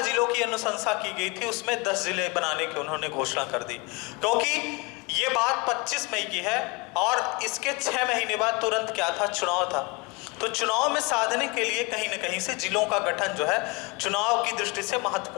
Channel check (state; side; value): quieter; right; 28.2 dB